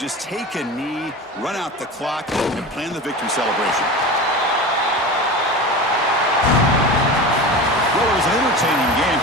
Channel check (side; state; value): both; normal; correlation 0.30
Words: take a knee, run out the clock, and plan the victory celebration. Well, was an entertaining game